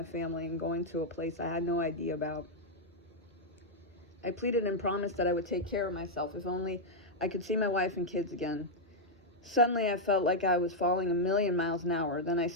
family and going to a place I had no idea about. I pleaded and promised that I would take care of myself if only I could see my wife and kids again. Suddenly, I felt like I was falling a million miles an hour. Then I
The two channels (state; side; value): normal; both; correlation -0.03